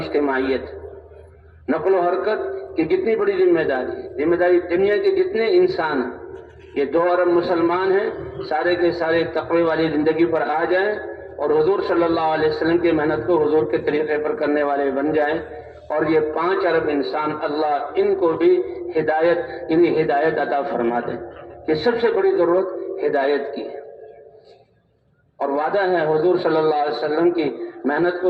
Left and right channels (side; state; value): both; identical; correlation 1.00